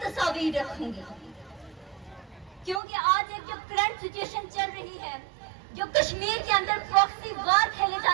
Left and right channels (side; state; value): left; drops out; at 2.8 s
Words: رکھوں گی، کیونکہ آج ایک جو کرنٹ سچویشن چل رہی ہے، جو کشمیر کے اندر پراکسی وار کھیلے